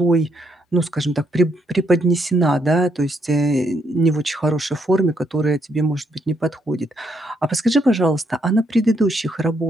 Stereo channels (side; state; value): both; normal; correlation 0.75